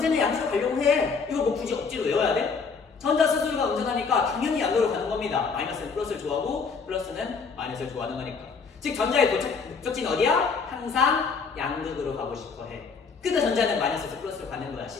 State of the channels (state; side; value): quieter; right; 5.1 dB